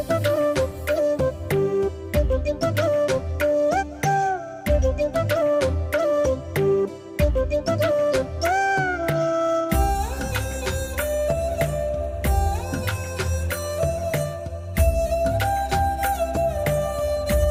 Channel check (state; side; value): identical; both; correlation 1.00